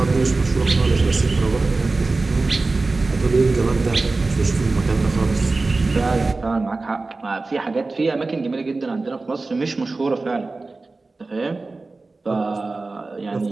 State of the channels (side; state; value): left; quieter; 3.5 dB